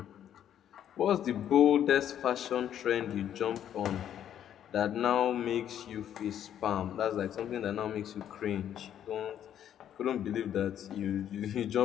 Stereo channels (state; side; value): quieter; right; 10.2 dB